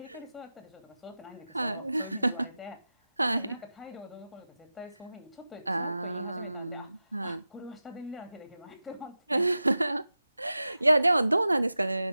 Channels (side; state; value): both; inverted; correlation -0.94